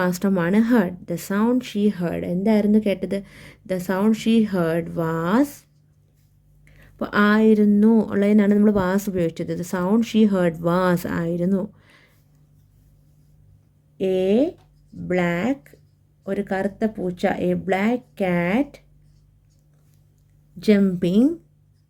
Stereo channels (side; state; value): both; identical; correlation 1.00